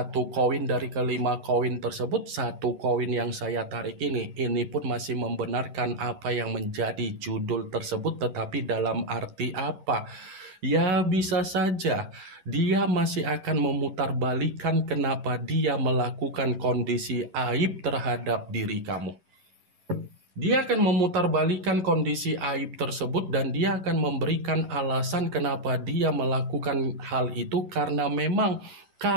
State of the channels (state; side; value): late; left; 11 ms